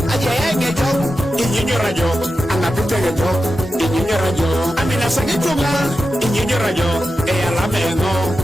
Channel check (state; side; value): normal; both; correlation 0.91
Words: aja ngejo, inyinyo rajo, anapite ngejo, inyinyo rajo, amina sagitunga, inyinyo rajo, iyala mengo,